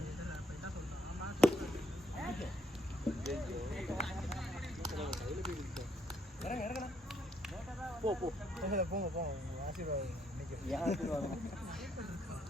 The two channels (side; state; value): both; normal; correlation 0.72